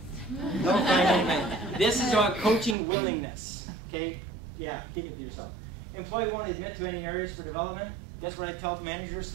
Don't find anybody. This is about coaching willingness. Okay? Yeah, keep it to yourself. Employee won't admit to any areas for development. Guess what I tell managers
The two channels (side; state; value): left; drops out; at 2.8 s